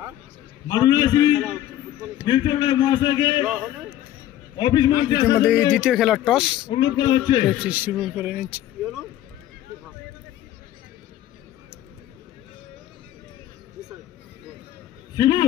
মারুনাসি নীলচন্দ্র মহাশয়কে অফিস মধ্যে দ্বিতীয় খেলার টস অনুরোধ করা হচ্ছে, শুরু করে নিচ্ছে।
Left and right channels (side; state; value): right; quieter; 12.9 dB